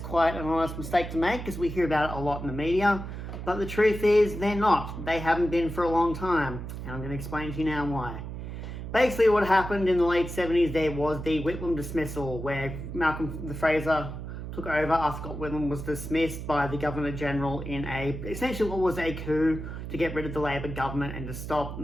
an honest mistake to make because we hear about it a lot in the media, but the truth is they're not. They haven't been for a long time, and I'm going to explain to you now why. Basically, what happened in the late 70s, there was the Whitlam dismissal, where Malcolm Fraser took over after Scott Whitlam was dismissed by the Governor-General in essentially what was a coup to get rid of the Labor government and to stop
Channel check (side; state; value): right; noise; hum, 8 dB below the sound